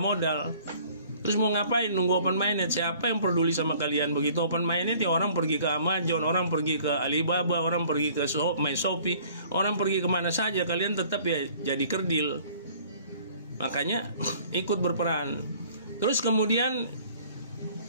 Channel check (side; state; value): both; inverted; correlation -0.53